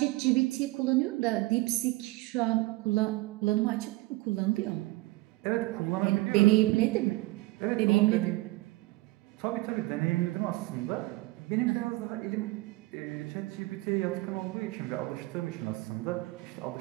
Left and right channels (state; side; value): quieter; left; 20.9 dB